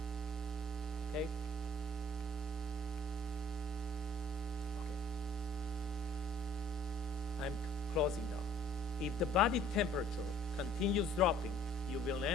Okay? Okay. I'm closing now. If the body temperature continues dropping, you will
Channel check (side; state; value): both; normal; correlation 0.55